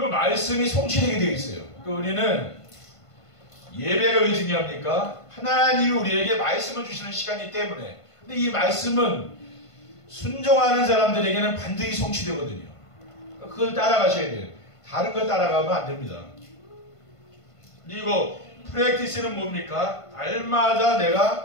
성취되게 되어 있어요. 우리는 예배가 왜 중요합니까? 하나님이 우리에게 말씀을 주시는 시간이기 때문에. 근데 이 말씀은 순종하는 사람들에게는 반드시 성취되거든요. 그걸 따라가셔야 돼요. 다른 걸 따라가면 안 됩니다. 그리고 프랙티스는 뭡니까? 날마다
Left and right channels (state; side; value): late; right; 1.5 ms